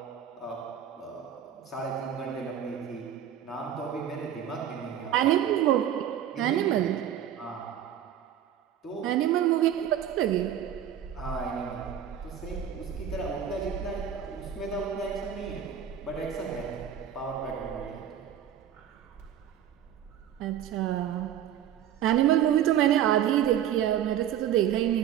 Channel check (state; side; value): quieter; left; 9.9 dB